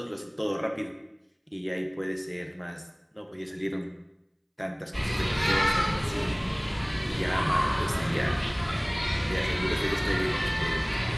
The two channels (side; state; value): both; identical; correlation 1.00